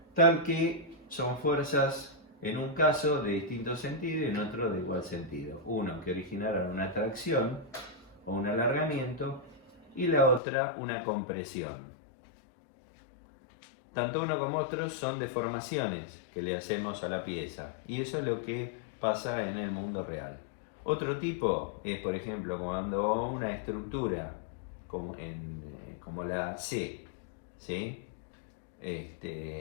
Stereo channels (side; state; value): right; drops out; at 10.4 s